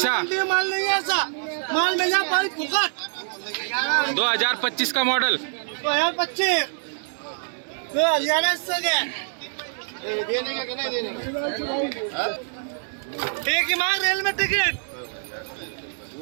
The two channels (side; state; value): left; silent; digital silence